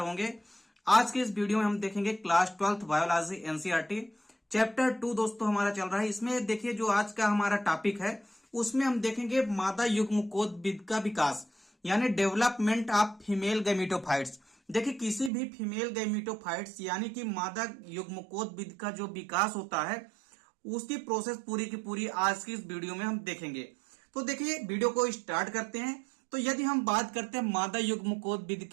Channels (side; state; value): left; drops out; at 15.3 s